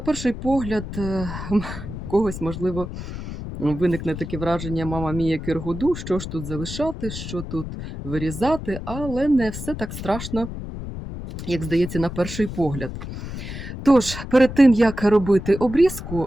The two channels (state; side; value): noise; left; rumble, 8 dB below the sound